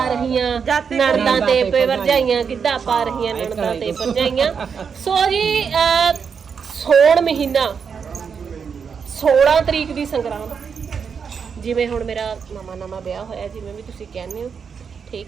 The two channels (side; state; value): left; quieter; 6.4 dB